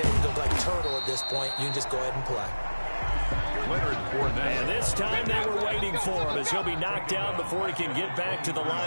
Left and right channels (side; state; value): both; inverted; correlation -1.00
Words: it look like a turtle at this point. You can just go ahead and play. And this time they were waiting for him as he'll be knocked down before he can get back to the